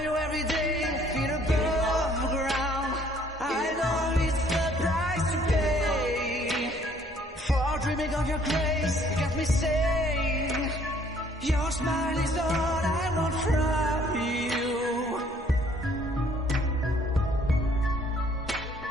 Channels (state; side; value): normal; both; correlation 0.61